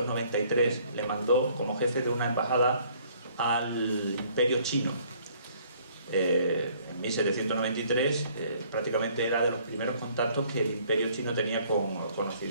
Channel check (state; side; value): inverted; both; correlation -0.61